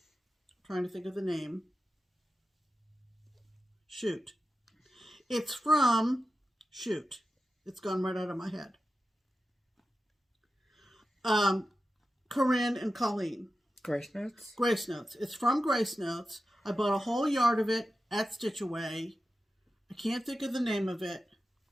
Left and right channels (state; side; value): normal; both; correlation 0.92